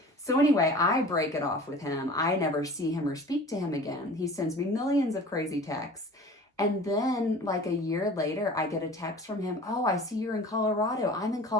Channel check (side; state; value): both; normal; correlation 0.42